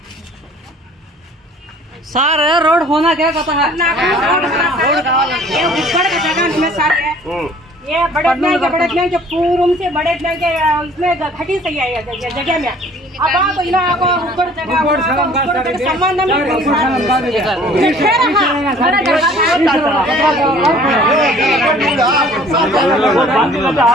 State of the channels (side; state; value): both; normal; correlation 0.52